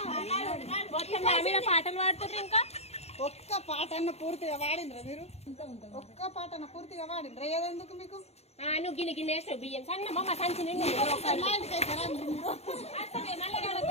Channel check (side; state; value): right; late; 0.31 ms